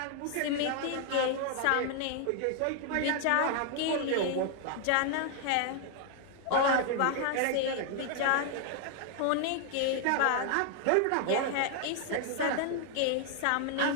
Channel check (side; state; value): both; different; correlation 0.00